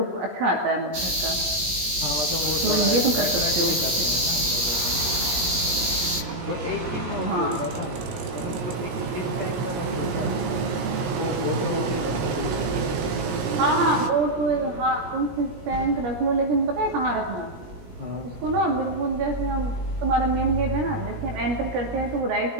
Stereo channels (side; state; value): left; late; 17 ms